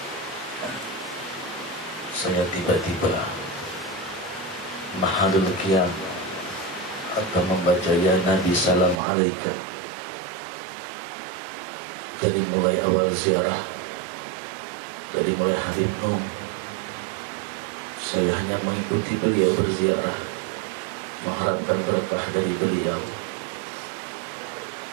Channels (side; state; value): left; drops out; at 9.0 s